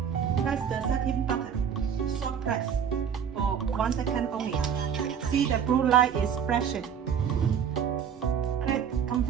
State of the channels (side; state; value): left; quieter; 7.9 dB